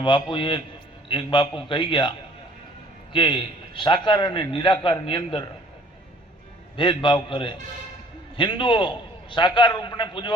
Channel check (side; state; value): both; normal; correlation 0.56